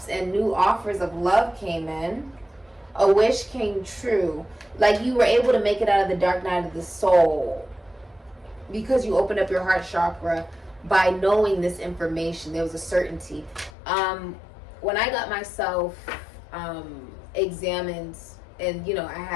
and new offers of love came in. A wish came true. Like you were able to make it out of the dark night of the soul because you opened up your heart chakra by knowing this information. There was a certainty. When I got myself examined, and I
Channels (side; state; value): right; drops out; at 13.7 s